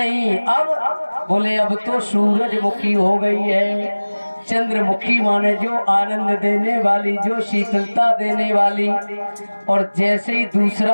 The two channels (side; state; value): both; inverted; correlation -1.00